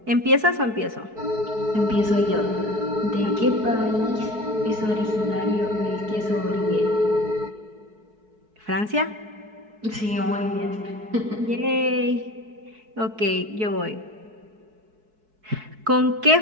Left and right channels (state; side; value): late; left; 4.6 ms